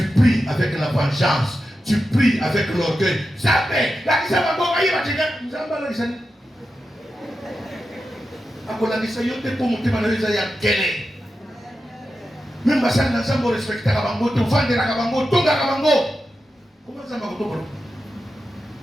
pries avec la vengeance. Tu pries avec l'orgueil. Jamais. akolakisa yo te mpo motema na yo eza ya nkele meme basali na nzambe orespektaka bango te ovandelaka bango otongaka bango koma nzambe akotokola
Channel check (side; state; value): both; normal; correlation 0.90